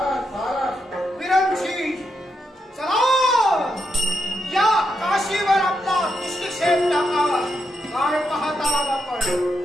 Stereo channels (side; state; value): both; normal; correlation 0.82